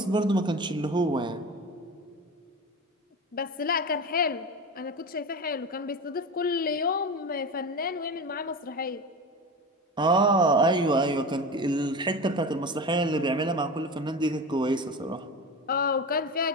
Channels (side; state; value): both; normal; correlation 0.27